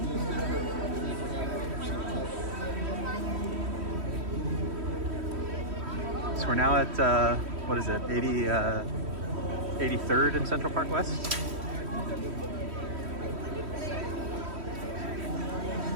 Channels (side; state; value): left; late; 3.1 ms